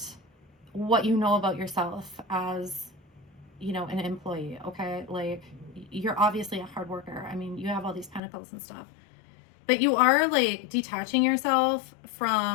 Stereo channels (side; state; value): right; drops out; at 8.2 s